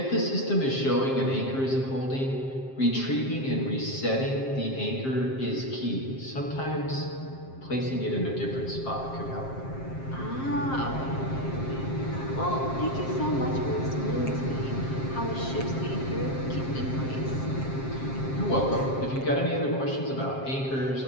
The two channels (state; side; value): late; right; 7.5 ms